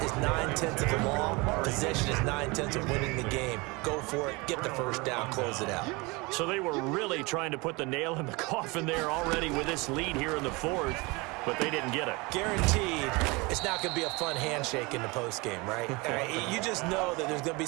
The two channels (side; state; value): left; quieter; 25.7 dB